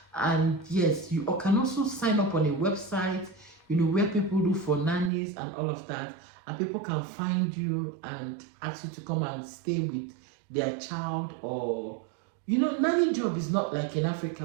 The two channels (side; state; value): left; drops out; at 5.1 s